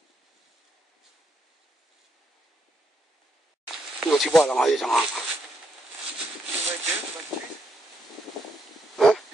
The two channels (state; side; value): normal; both; correlation 0.78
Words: 我去报了嘛，有什么？嗯？